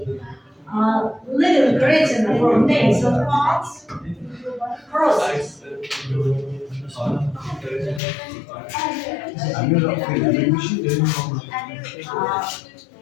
leaving retina from nasal parts crosses.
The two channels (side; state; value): right; drops out; at 8.0 s